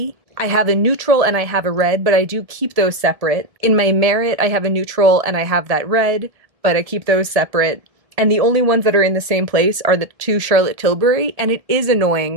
I have a neutral, and I have a red, but I do keep those separate. In my Merit, I have a neutral and I have that red, but I keep those separate. And the only ones that are in the same place are the two Charlotte Tilbury, and it is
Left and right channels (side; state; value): left; late; 1.7 ms